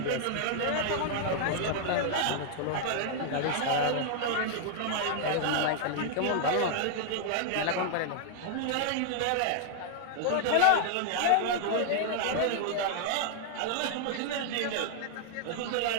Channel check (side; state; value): both; different; correlation 0.00